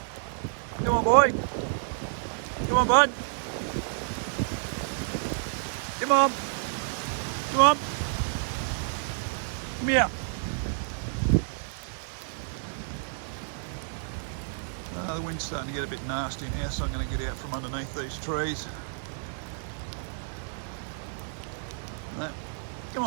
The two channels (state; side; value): silent; left; digital silence